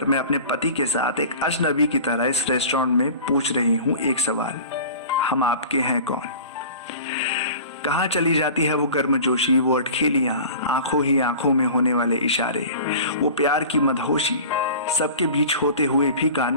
मैं अपने पति के साथ एक अजनबी की तरह इस रेस्टोरेंट में पूछ रही हूँ एक सवाल, हम आपके हैं कौन। कहाँ चली जाती है वो गर्मजोशी, वो अटखेलियां, आंखों ही आंखों में होने वाले इशारे, वो प्यार की मदहोशी, सबके बीच होते हुए भी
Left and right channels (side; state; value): both; inverted; correlation -0.39